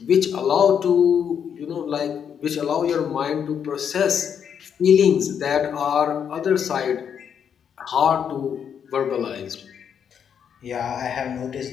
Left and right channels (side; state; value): right; quieter; 7.9 dB